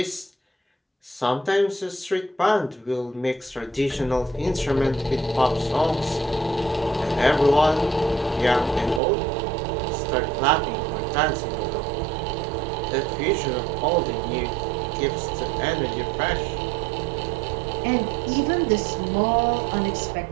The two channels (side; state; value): left; drops out; at 9.0 s